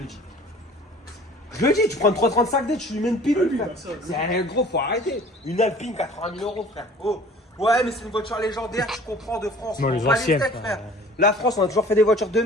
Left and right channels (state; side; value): normal; both; correlation 0.48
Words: dis. Je le dis, tu prends une 335D, tu lui mets une pilule, Oui, frère. bah ça, C'est gros, faut arrêter. Une Alpine, 80 000 euros, frère. Oh. Ouais, mais c'est une voiture légendaire, je comprends, de France. Non, On les va anciennes, steaks, frère. La France, on a toujours fait des voitures de